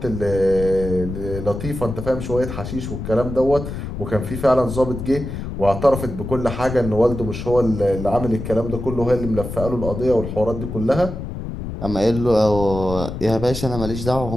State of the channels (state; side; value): noise; left; rumble, 7 dB below the sound